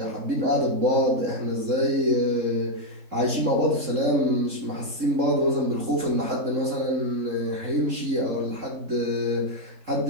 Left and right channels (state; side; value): late; left; 3.7 ms